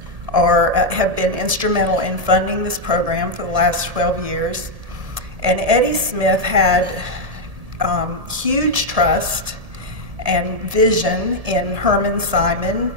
have been instrumental in funding this program for the last 12 years. And Eddie Smith had huge trust and vision in Herman Simon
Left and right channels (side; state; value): left; late; 1.7 ms